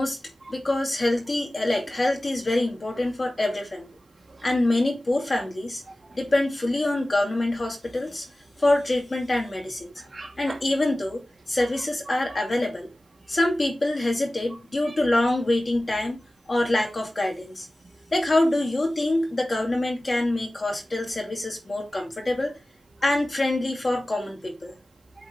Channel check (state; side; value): normal; both; correlation 0.97